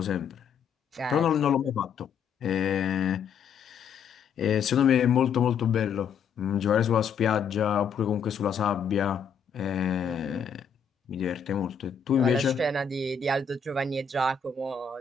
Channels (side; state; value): right; quieter; 6.6 dB